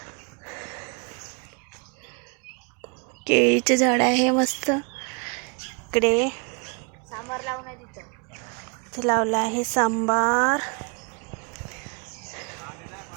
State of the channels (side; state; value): left; quieter; 35.7 dB